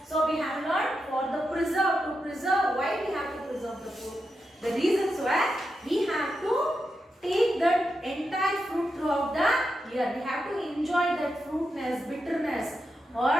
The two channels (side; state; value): both; normal; correlation 0.87